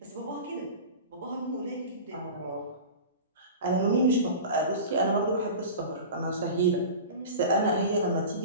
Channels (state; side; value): inverted; both; correlation -0.34